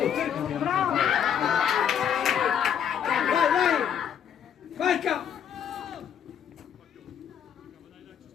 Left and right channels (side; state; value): right; quieter; 8.6 dB